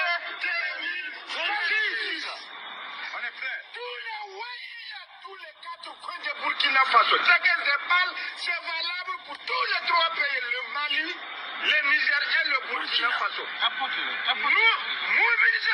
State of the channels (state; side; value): identical; both; correlation 1.00